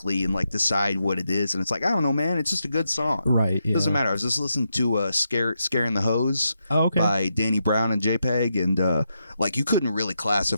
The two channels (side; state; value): both; inverted; correlation -0.84